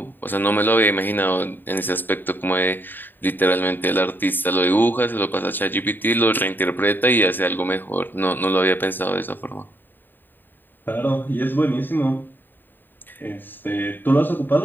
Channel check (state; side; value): late; right; 0.093 ms